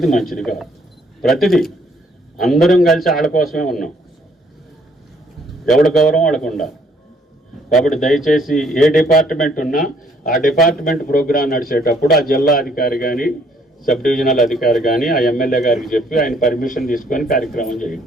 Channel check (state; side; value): normal; both; correlation 0.65